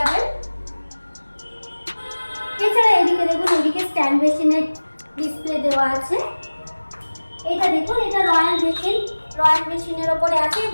এছাড়া এদিকে দেখুন, এদিকে স্ট্যান্ড বেসিনের ডিসপ্লে দেওয়া আছে। এটা দেখুন, এটা রয়্যাল বেসিনের ওপরে আছে।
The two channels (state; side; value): inverted; both; correlation -1.00